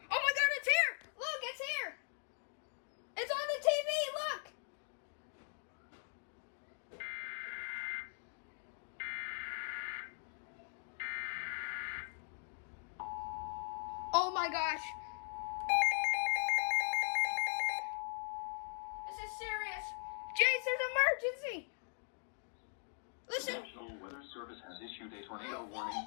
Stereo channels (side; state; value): right; silent; 51 dB below the other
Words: my God, it's here. Look, it's here. It's on the TV, look. Oh my gosh. This is serious. Jason's emergency. The Listen. National Weather Service has issued a tornado warning